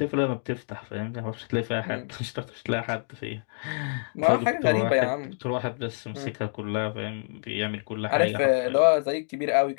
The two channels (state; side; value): silent; right; 60 dB below the other